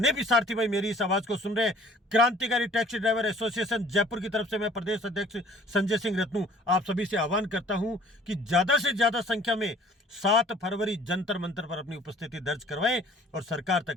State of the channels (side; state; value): both; normal; correlation 0.53